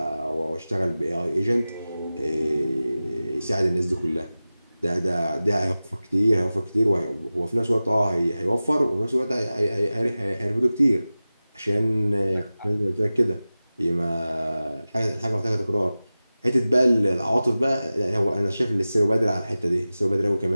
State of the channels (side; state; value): both; inverted; correlation -0.96